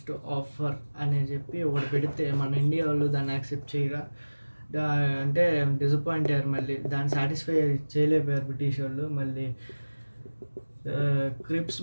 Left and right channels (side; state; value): both; inverted; correlation -1.00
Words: ఆఫర్ అని చెప్పి ఒకటి పెడితే మన ఇండియా వాళ్ళు దాన్ని యాక్సెప్ట్ చేయరా, అంటే డిసప్పాయింట్ అయ్యారు. మళ్ళీ దాన్ని సాటిస్ఫై చేయలేకపోయారు బ్రిటిష్ వాళ్ళు. మళ్ళీ క్రిప్స్